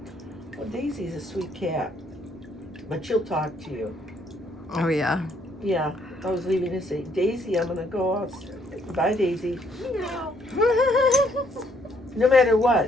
Well, Daisy's a sweet cat, but she'll talk to you. Oh yeah. Yeah, I was leaving to say, Daisy, I'm gonna go out. Bye, Daisy. Meow. No matter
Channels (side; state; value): both; normal; correlation 0.68